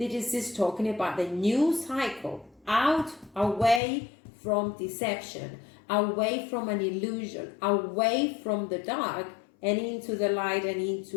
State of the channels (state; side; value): drops out; right; at 3.8 s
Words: is talking about the new cycle. Out, away from deception. Away from an illusion. Away from the dark and into the light, and